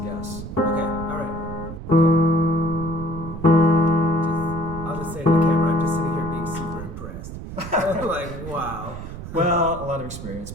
Okay, all right. I'll just say to the camera, I'm just sitting here being super impressed. I'm like, wow. Well, a lot of experience.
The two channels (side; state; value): right; noise; rumble, 10 dB below the sound